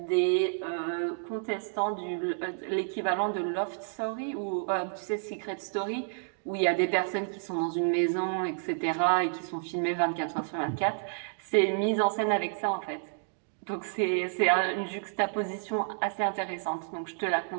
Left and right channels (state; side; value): silent; left; digital silence